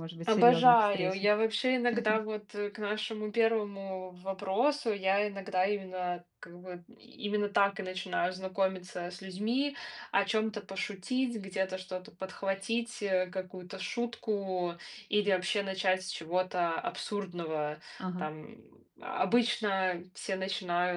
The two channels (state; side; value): identical; both; correlation 1.00